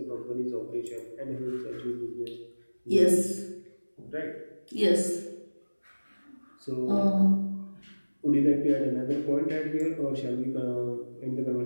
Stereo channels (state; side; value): inverted; both; correlation -1.00